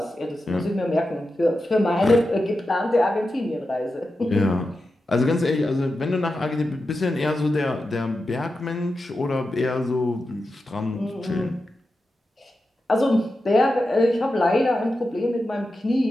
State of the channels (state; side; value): normal; both; correlation 0.90